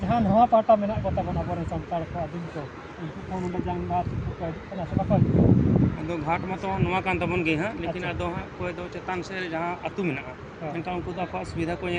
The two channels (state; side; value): identical; both; correlation 1.00